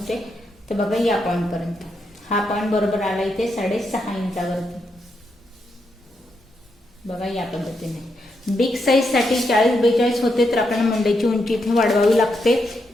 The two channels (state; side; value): normal; both; correlation 0.82